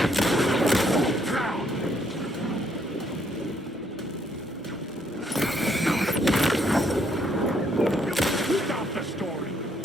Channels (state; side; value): normal; both; correlation 0.71